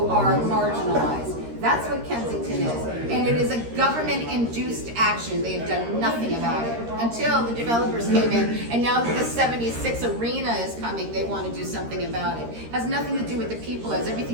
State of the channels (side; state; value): left; late; 13 ms